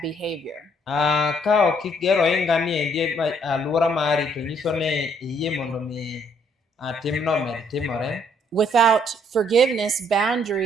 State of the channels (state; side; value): normal; both; correlation 0.66